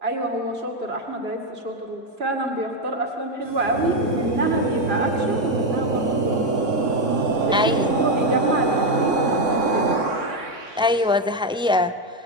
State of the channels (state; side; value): normal; both; correlation 0.07